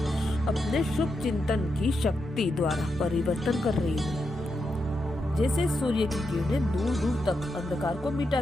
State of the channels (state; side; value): normal; both; correlation 0.85